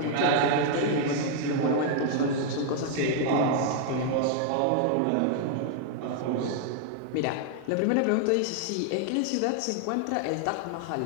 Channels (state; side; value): different; both; correlation 0.00